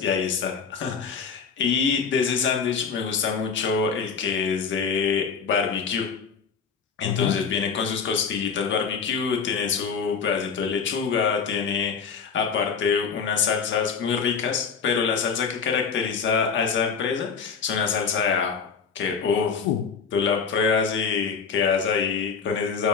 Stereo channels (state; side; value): quieter; right; 6.0 dB